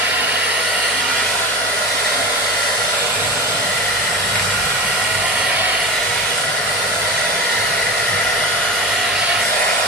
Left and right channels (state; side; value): normal; both; correlation 0.28